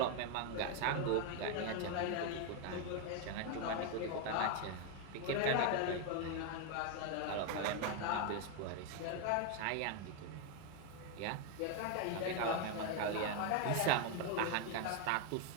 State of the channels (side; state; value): both; different; correlation 0.01